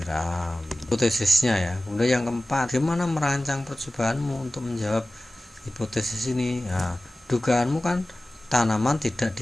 hipotesisnya ya. Kemudian yang keempat, gimana merancang percobaanmu untuk menjawab hipotesis ini? Nah, dugaanmu kan tanaman tidak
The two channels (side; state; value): both; normal; correlation 0.97